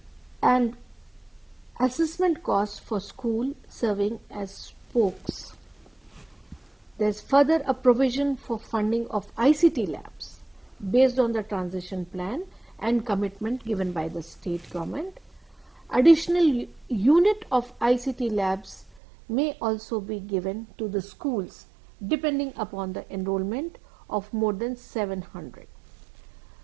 and assessment cost for school serving as spokes. There is further a provision for funding of ICT labs based on the transition plan and commitment given by the state government. Additional unit of ICT labs may also be given to the schools depending upon the enrollment of more than 700.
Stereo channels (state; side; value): drops out; left; at 19.0 s